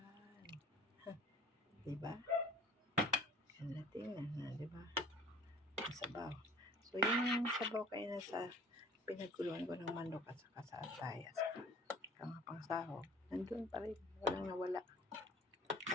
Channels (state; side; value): normal; both; correlation 0.48